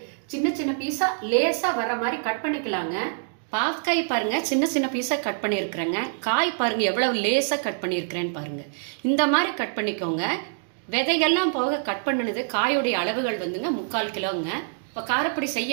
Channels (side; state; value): left; silent; digital silence